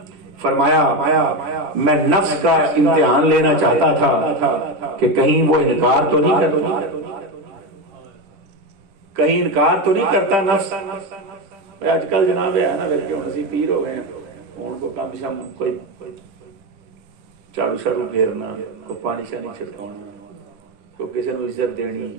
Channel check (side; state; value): left; late; 10 ms